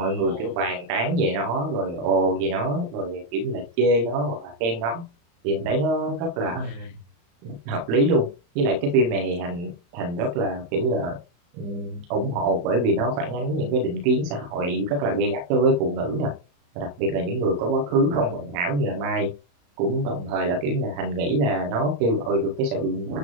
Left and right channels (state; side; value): late; left; 35 ms